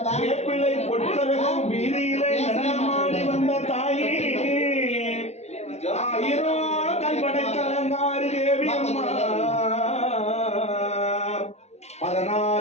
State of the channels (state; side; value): late; right; 0.31 ms